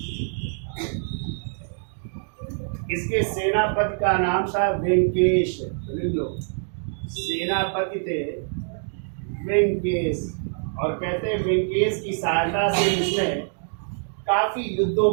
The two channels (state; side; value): silent; left; digital silence